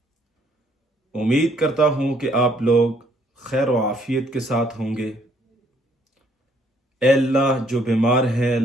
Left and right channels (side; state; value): both; normal; correlation 0.66